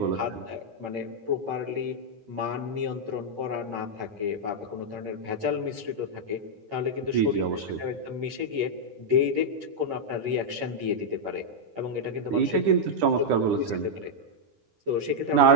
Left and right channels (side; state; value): left; late; 9.6 ms